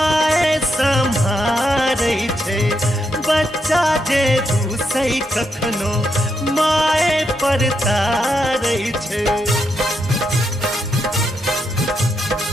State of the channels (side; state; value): both; normal; correlation 0.81